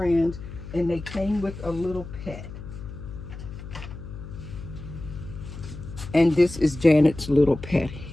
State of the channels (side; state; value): left; noise; hum, 12 dB below the sound